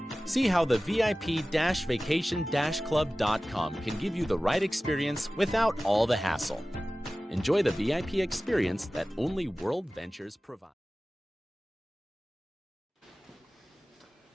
See how the VIP-vacation-club.com can give you the right experience without all the hassle. Enjoy the VIP experience that only World Ventures provides.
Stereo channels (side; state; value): both; normal; correlation 0.97